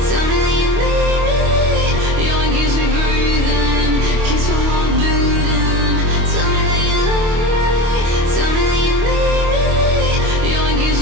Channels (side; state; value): left; late; 25 ms